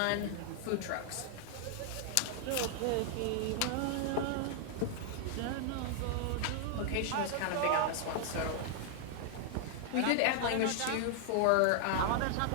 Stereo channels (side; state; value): both; different; correlation 0.00